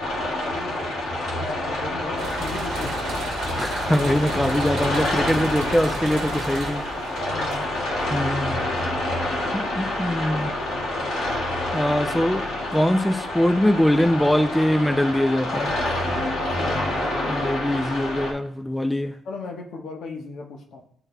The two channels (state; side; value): normal; both; correlation 0.88